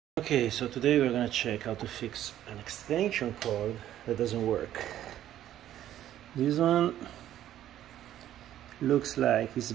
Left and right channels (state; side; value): quieter; left; 12.1 dB